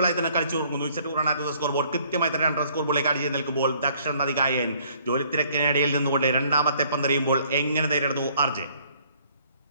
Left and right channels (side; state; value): both; inverted; correlation -0.61